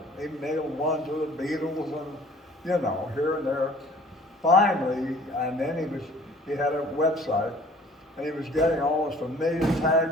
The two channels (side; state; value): both; normal; correlation 0.52